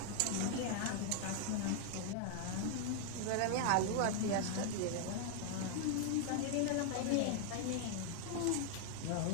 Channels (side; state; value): both; different; correlation 0.00